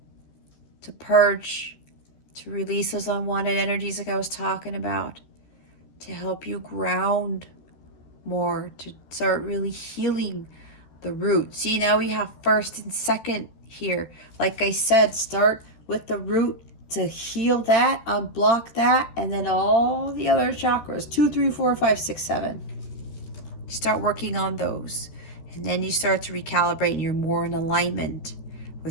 to purge, to release those unwanted energies like I was talking about, to help you ground more, to start really healing the root. See, now we have first and second here. Like I said, start with the root to heal that, unblock that, and then all the other chakras, 2, 3, 4, 5, 6, 7. You start working on those. And then you start to recalibrate and you're more in alignment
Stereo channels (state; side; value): late; right; 13 ms